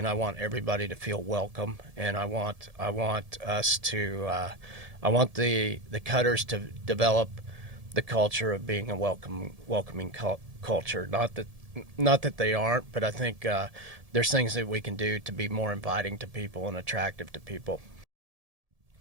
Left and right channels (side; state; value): left; late; 1.7 ms